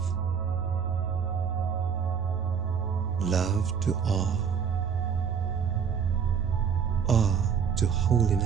love to awe, awe to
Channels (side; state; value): left; quieter; 6.9 dB